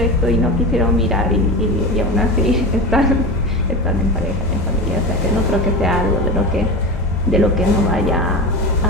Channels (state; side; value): normal; both; correlation 0.26